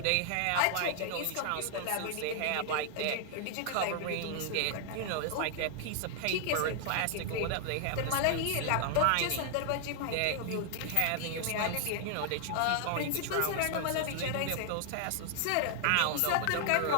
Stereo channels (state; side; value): different; both; correlation 0.00